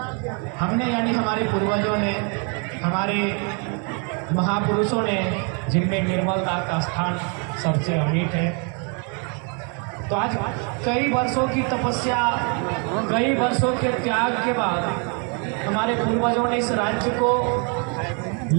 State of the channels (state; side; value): quieter; left; 37.1 dB